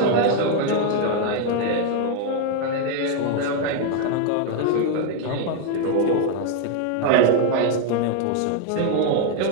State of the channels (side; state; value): both; different; correlation 0.00